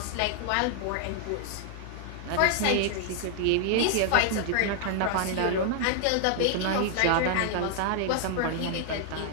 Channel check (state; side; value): different; both; correlation 0.00